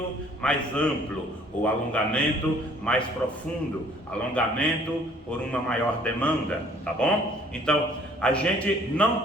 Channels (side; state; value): both; normal; correlation 0.57